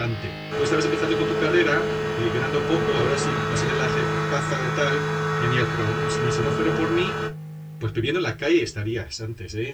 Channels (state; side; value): identical; both; correlation 1.00